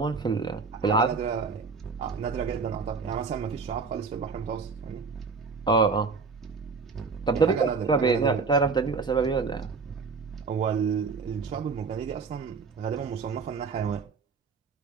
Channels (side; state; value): left; quieter; 4.8 dB